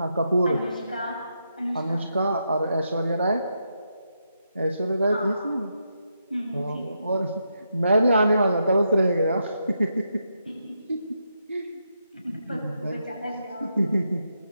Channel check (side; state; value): both; inverted; correlation -0.82